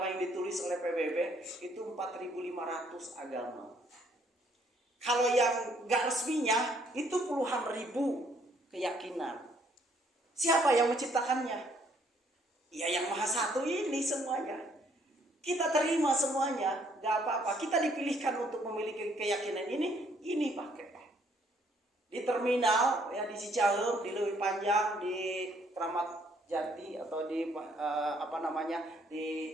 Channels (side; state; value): both; normal; correlation 0.66